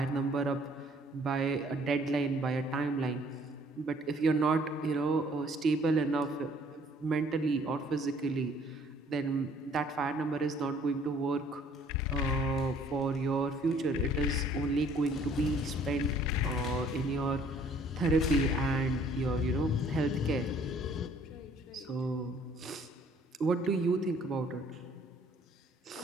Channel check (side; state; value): both; normal; correlation 0.59